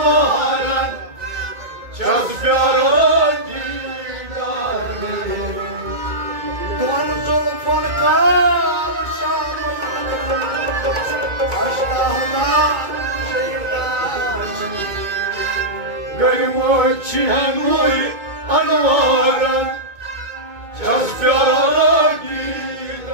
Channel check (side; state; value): left; late; 2.2 ms